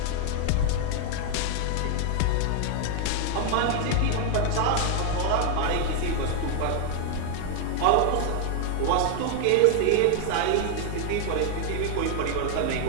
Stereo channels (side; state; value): both; different; correlation 0.00